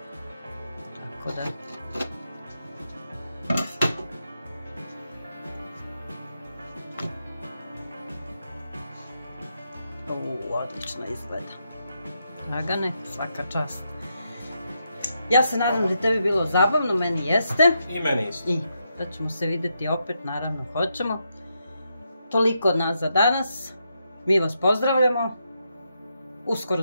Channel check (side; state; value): both; inverted; correlation -0.82